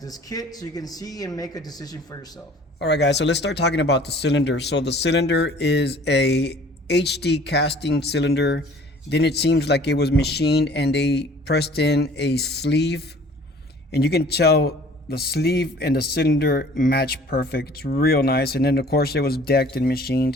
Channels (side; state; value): both; normal; correlation 0.51